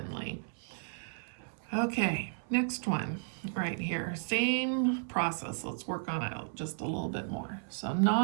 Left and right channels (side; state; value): left; silent; 55 dB below the other